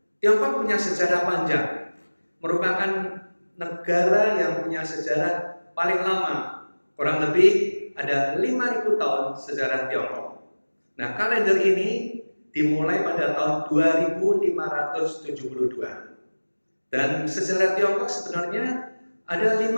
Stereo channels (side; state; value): both; inverted; correlation -1.00